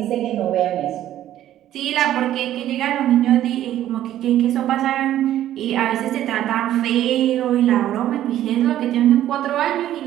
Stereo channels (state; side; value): quieter; left; 12.5 dB